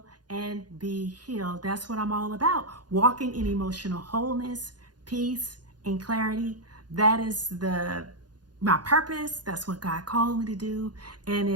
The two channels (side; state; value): left; late; 0.70 ms